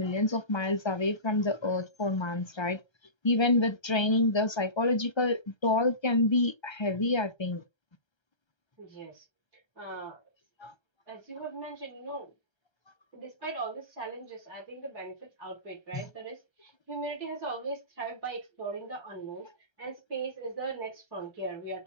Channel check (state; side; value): late; right; 1.3 ms